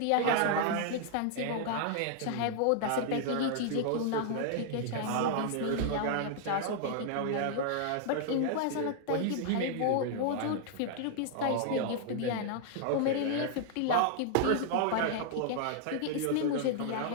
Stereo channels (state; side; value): different; both; correlation -0.01